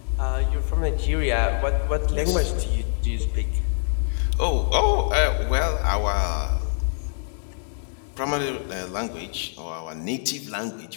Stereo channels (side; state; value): right; silent; digital silence